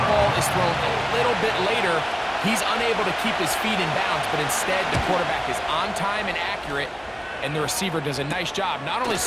ball is thrown a little bit later, he's unable to keep his feet in bounds, but instead the quarterback is on time and accurate, and the receiver does a nice job not only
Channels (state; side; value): identical; both; correlation 1.00